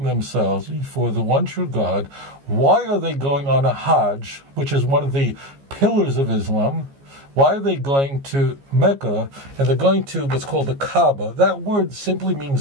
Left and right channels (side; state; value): left; late; 15 ms